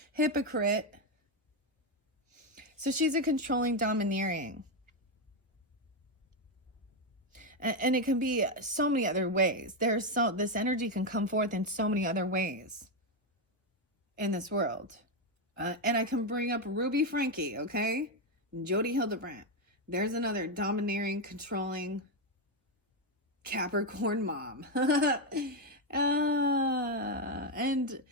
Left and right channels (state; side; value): normal; both; correlation 0.05